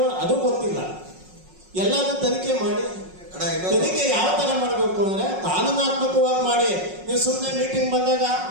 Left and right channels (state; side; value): late; left; 5.5 ms